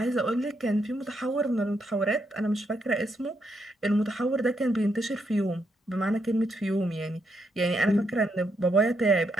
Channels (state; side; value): normal; both; correlation 0.78